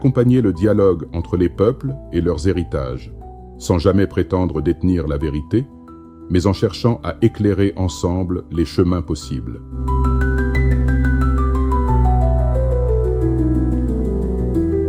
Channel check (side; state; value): both; identical; correlation 1.00